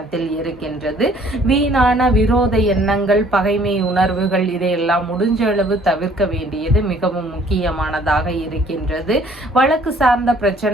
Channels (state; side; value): normal; both; correlation 0.58